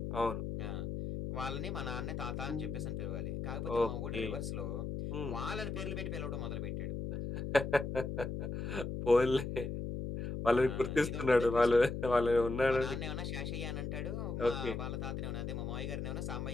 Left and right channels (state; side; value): noise; left; hum, 4 dB below the sound